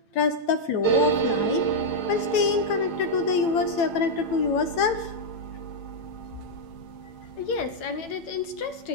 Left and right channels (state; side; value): late; right; 8.9 ms